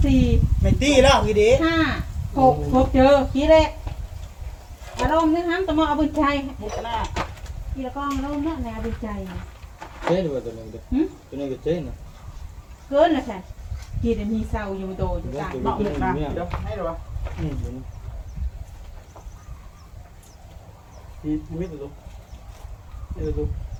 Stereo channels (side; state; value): both; identical; correlation 1.00